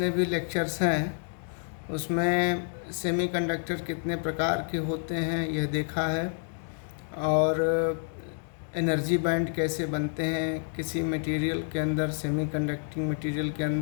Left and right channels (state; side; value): silent; right; digital silence